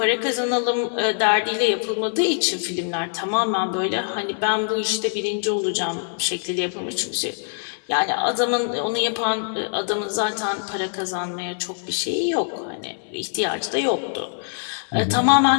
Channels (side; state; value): right; silent; 63 dB below the other